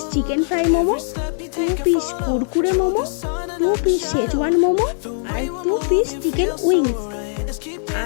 chicken fry momo, 2 piece kurkure momo, 2 piece Schezwan momo আর 2 পিস চিকেন উইংস।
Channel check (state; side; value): silent; right; digital silence